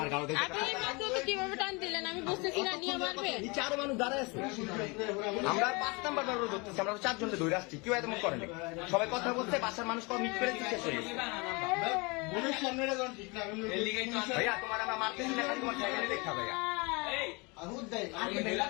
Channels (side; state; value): right; quieter; 28.1 dB